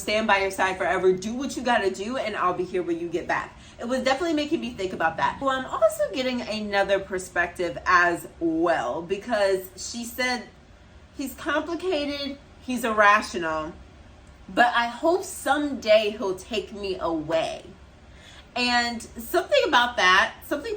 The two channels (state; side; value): identical; both; correlation 1.00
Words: by your side forever. Do what you gotta do, and I'll be here when you get back. It was definitely making me think about that. Well, I'm also getting another perspective as well, because she said he's complicated, he's irrational, but I hope someday he'll take me away. And something about